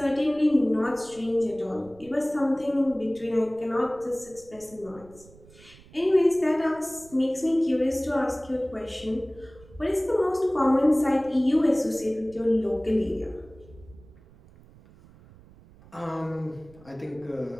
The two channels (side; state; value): right; noise; rumble, 24 dB below the sound